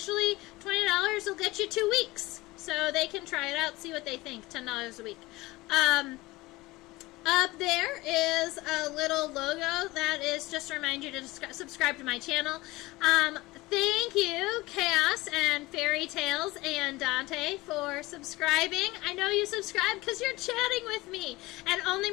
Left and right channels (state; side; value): quieter; right; 20.5 dB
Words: $20 will get you 2 weeks. So they can try it out, see what they think. $10 a week. Up there is a little logo that is just to remind you to subscribe to my channel. Thank you, Chaos and Fairy Tales and Dante, for subscribing. I know you subscribe because you're chatting with me, and only